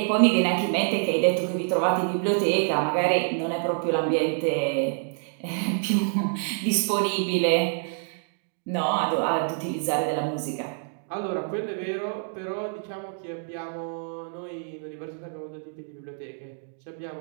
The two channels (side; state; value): left; silent; 60 dB below the other